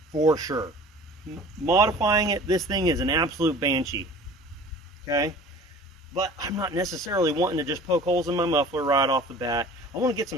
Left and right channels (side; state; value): both; normal; correlation 0.44